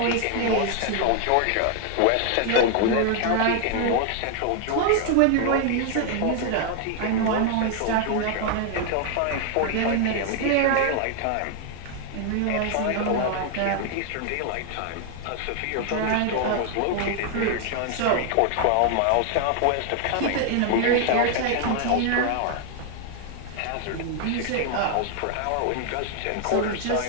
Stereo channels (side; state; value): both; different; correlation 0.00